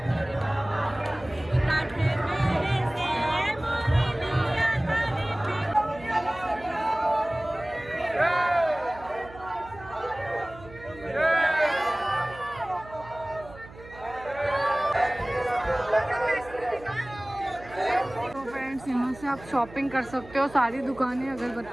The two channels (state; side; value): noise; right; hum, 19 dB below the sound